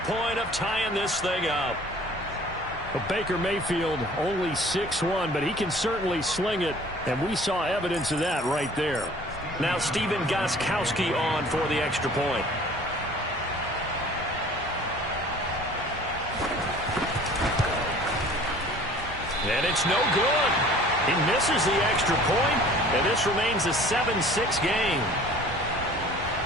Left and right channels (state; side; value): normal; both; correlation 0.49